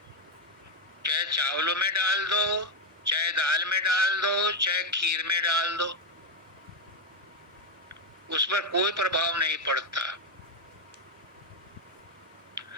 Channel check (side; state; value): both; normal; correlation 0.05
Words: चाहे चावलों में डाल दो, चाहे दाल में डाल दो, चाहे खीर में डाल दो, उस पर कोई प्रभाव नहीं पड़ता।